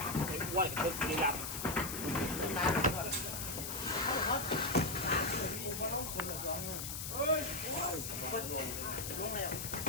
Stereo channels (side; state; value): left; noise; hiss, 5 dB below the sound